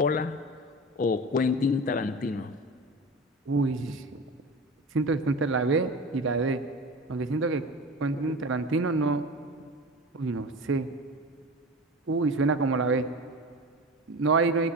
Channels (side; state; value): both; normal; correlation 0.31